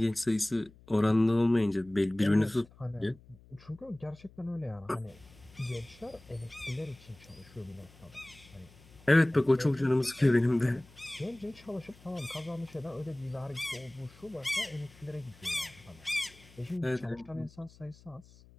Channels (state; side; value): noise; left; hum, 24 dB below the sound